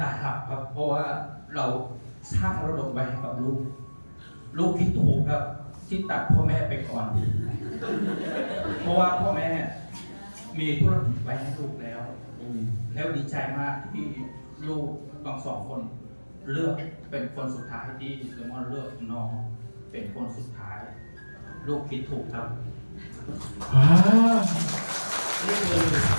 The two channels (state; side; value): inverted; both; correlation -1.00